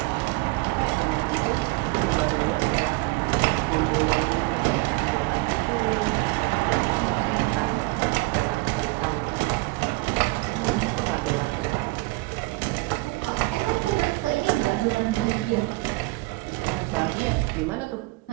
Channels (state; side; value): quieter; left; 23.7 dB